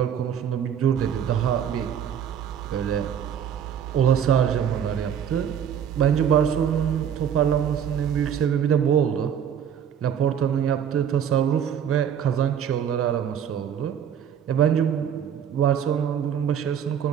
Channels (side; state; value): left; quieter; 8.6 dB